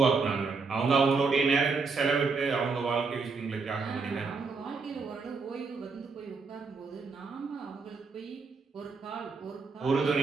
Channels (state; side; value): quieter; left; 4.5 dB